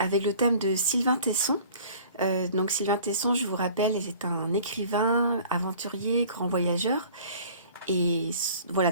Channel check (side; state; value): both; inverted; correlation -0.49